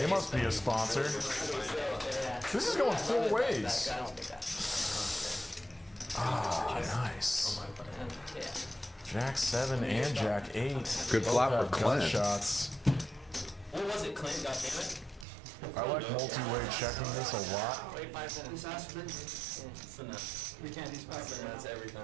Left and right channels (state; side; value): drops out; left; at 15.2 s